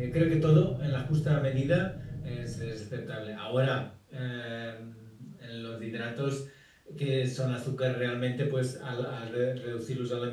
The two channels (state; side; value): identical; both; correlation 1.00